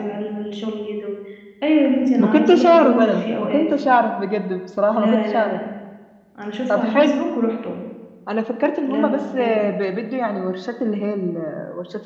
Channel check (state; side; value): identical; both; correlation 1.00